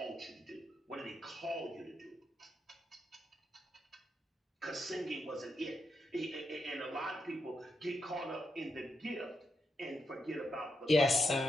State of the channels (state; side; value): normal; both; correlation 0.83